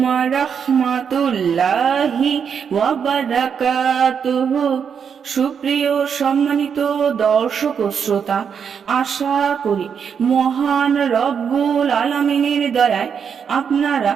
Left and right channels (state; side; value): quieter; left; 7.0 dB